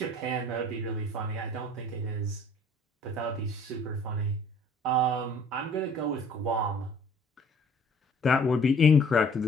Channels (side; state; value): both; normal; correlation 0.54